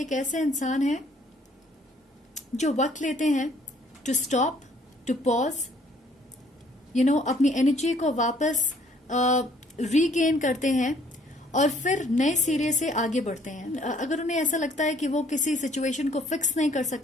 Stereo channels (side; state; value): both; normal; correlation 0.61